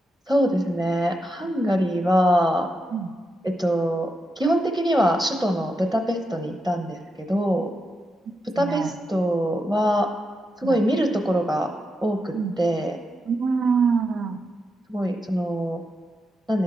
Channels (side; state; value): both; normal; correlation 0.85